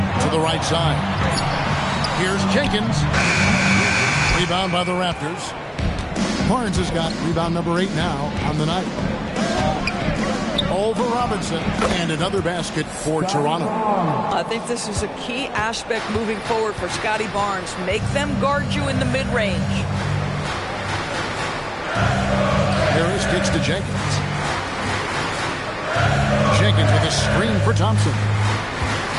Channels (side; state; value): both; identical; correlation 1.00